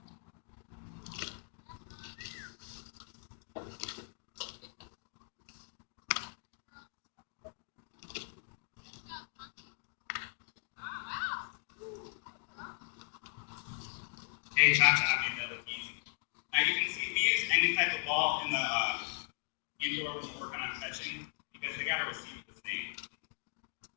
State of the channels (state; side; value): silent; right; 52 dB below the other